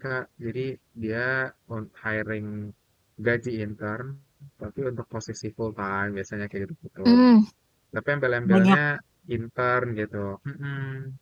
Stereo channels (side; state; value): both; identical; correlation 1.00